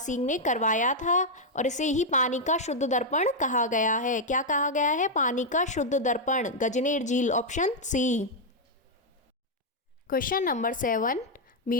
ने करवाया था और इसे ही पानी का शुद्ध दर्पण कहा गया है। क्या कहा गया है? पानी का शुद्ध दर्पण, गजनेर झील, ऑप्शन सी। क्वेश्चन नंबर 7,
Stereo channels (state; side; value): normal; both; correlation -0.02